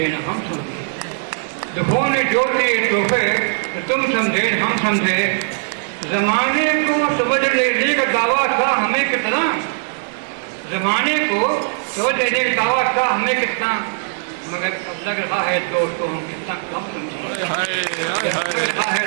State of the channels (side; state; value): left; silent; digital silence